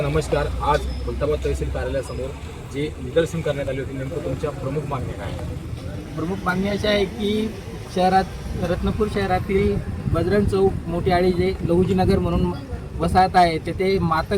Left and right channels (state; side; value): identical; both; correlation 1.00